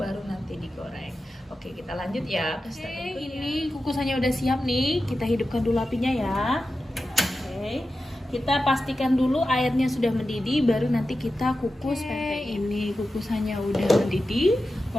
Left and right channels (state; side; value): normal; both; correlation 0.92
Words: nanti digoreng. Oke, kita lanjut ya ke step berikutnya. Ini kukusannya udah siap nih. Kita hidupkan dulu apinya ya. Oke. Kita pastikan dulu airnya sudah mendidih baru nanti kita kukus pempek. Ini kukusannya udah mendidih.